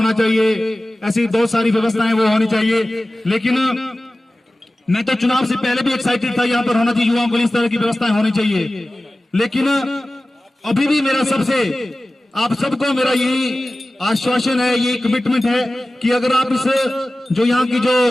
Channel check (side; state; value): both; normal; correlation 0.96